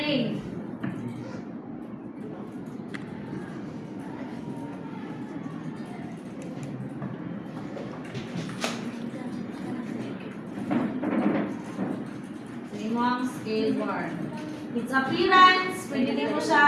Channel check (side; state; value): both; identical; correlation 1.00